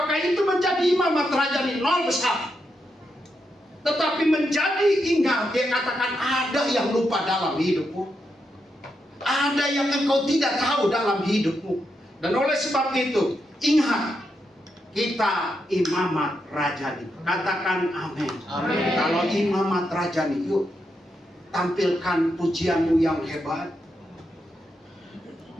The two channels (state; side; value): normal; both; correlation 0.83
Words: itu menjadi imamat rajani? Nol besar. Tetapi menjadi ingat, dia katakan ada yang lupa dalam hidupmu. Ada yang engkau tidak tahu dalam hidupmu. Dan oleh sebab itu, ingat, Kita imamat rajani. Katakan amin. Amin. Kalau imamat rajani, yuk tampilkan pujianmu yang hebat.